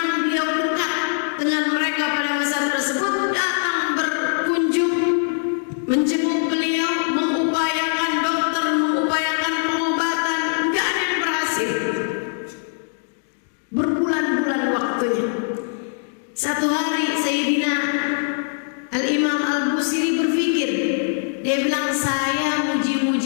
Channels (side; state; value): right; silent; 64 dB below the other